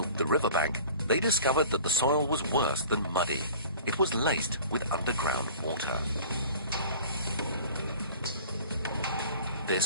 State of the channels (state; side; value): inverted; both; correlation -0.44